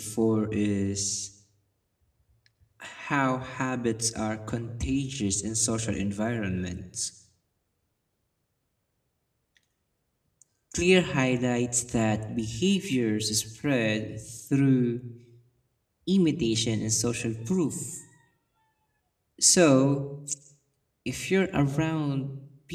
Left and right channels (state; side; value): identical; both; correlation 1.00